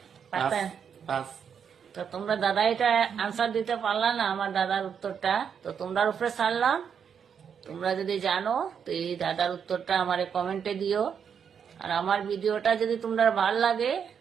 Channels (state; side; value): quieter; left; 7.4 dB